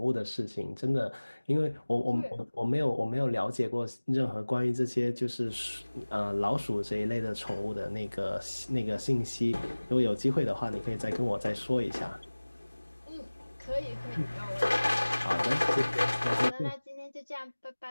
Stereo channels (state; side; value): inverted; both; correlation -1.00